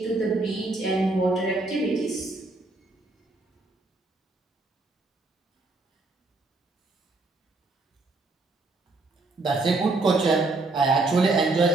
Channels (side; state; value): left; quieter; 3.3 dB